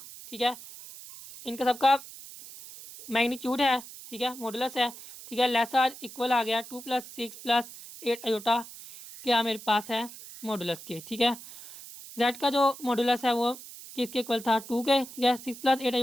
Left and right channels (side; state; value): right; noise; hiss, 15 dB below the sound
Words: ठीक है, इनका सबका मैग्नीट्यूड है। ठीक है, मॉडुलस है। ठीक है, लेसर इक्वल आ गया 2 + 6 + 8 आयोटा क्या मेरे पास है मॉडुलस के। ठीक है, जेड का जो मॉडुलस है वो किसके इक्वल था 2 के। ठीक है, 6 + 8